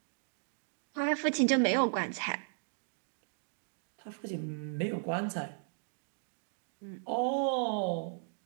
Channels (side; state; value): left; silent; digital silence